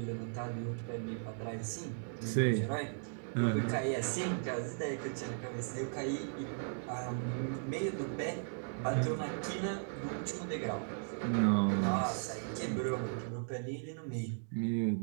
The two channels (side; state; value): left; silent; digital silence